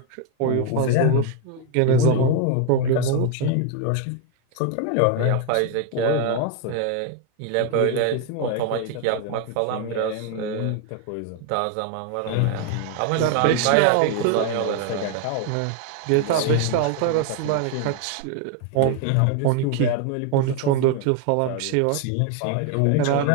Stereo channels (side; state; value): both; different; correlation 0.01